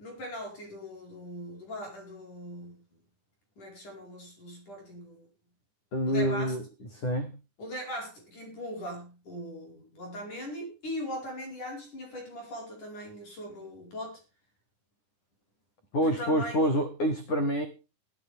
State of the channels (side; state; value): right; late; 10 ms